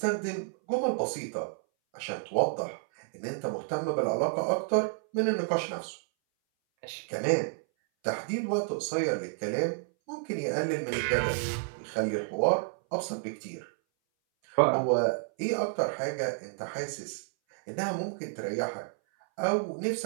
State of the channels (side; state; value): left; silent; 57 dB below the other